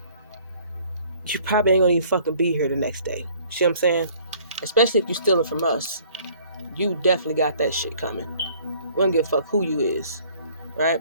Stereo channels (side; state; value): both; inverted; correlation -0.56